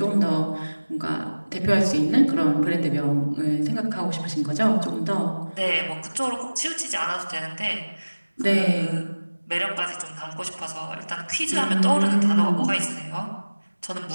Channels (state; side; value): inverted; both; correlation -1.00